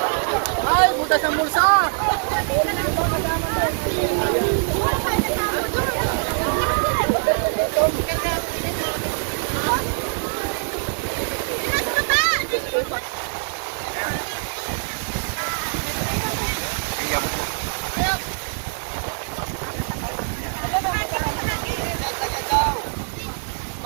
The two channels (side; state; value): left; silent; digital silence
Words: Ay, butas ang bulsa!